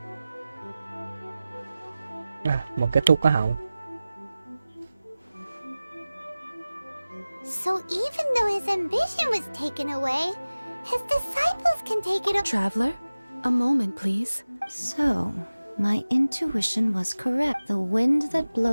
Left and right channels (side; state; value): both; inverted; correlation -0.97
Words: Một cái tu có hậu. So even though his ambition was taken away, his disciples can take it... Traveler, a moment, please. So... My intuition was correct. The wind that